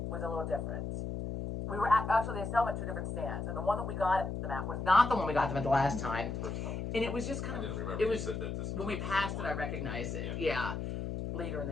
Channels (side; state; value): left; noise; hum, 4 dB below the sound